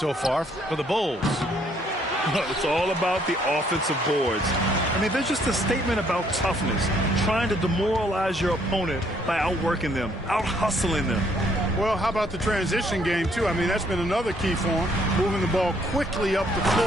far for the Bulls. It's all about the offensive boards. I mean, they're just a statement about toughness, trying to demoralize your opponent by outworking them, out-hustling them. Well, how about the transition game, too? I mean, that's been another key for them, moving the ball quickly up the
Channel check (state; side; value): normal; both; correlation 0.67